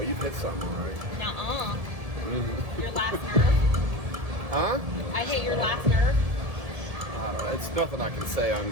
you've hit something, right? Nuh-uh. Mm-hmm. Your last nerve. Huh? I hit your last nerve. I don't know. It's nothing I can say on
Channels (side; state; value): left; late; 1.7 ms